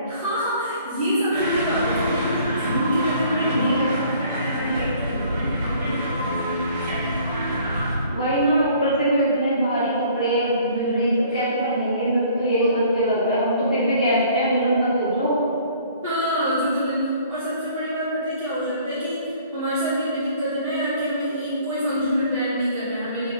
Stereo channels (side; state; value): both; inverted; correlation -0.56